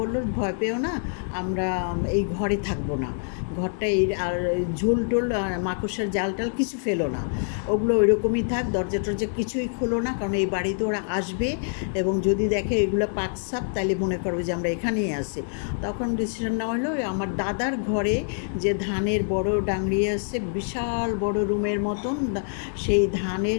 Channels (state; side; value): silent; right; 61 dB below the other